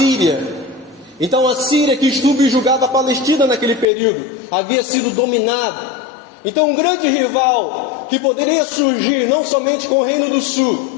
Então a Síria, que subjugava a Palestina naquele período, havia sido dominada. Então um grande rival que poderia surgir não somente com o Reino do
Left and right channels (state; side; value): drops out; right; at 3.9 s